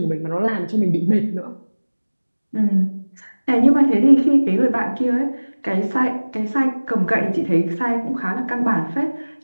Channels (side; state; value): both; inverted; correlation -1.00